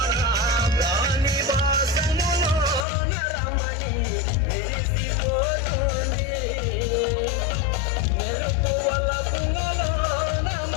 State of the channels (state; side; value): drops out; right; at 2.9 s